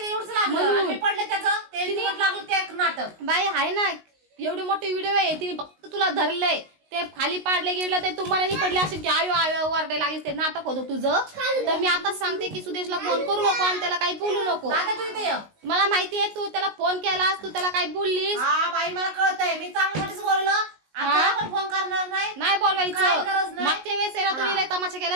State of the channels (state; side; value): late; left; 19 ms